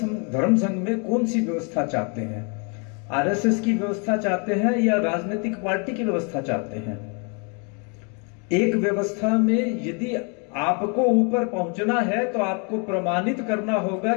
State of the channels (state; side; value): quieter; right; 36.0 dB